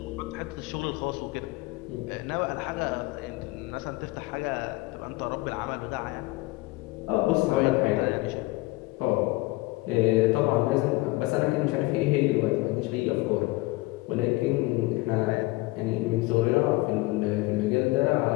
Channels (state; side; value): quieter; right; 21.7 dB